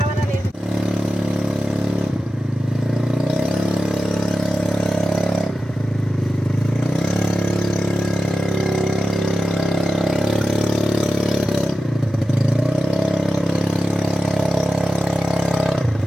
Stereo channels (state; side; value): normal; both; correlation 0.92